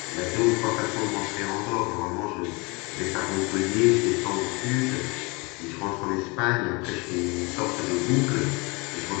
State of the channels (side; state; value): right; quieter; 27.9 dB